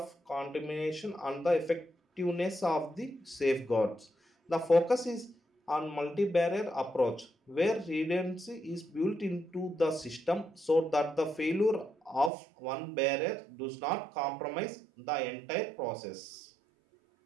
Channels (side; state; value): left; drops out; at 12.3 s